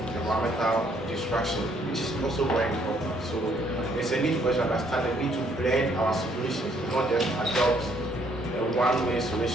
environmental destruction, which is also very important. So there's a need for us to understand the need to blend our solutions, not just adopt a one-way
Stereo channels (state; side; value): normal; both; correlation 0.67